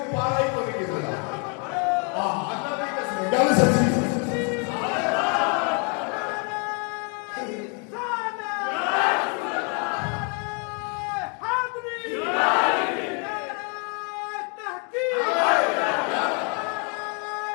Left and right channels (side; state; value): right; quieter; 36.6 dB